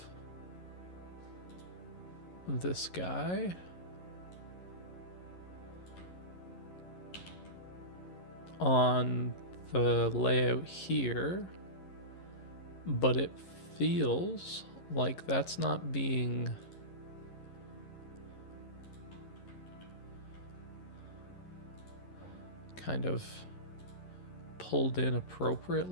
this guy. On the layout here, but it feels like that's not being kind of pulled in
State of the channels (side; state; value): right; late; 11 ms